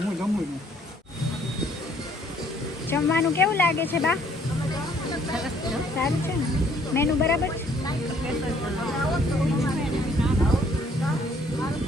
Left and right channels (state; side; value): normal; both; correlation 0.62